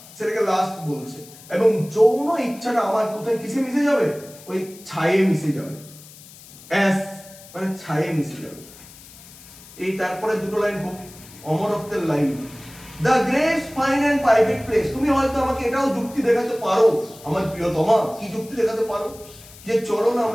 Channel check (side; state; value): left; noise; hiss, 20 dB below the sound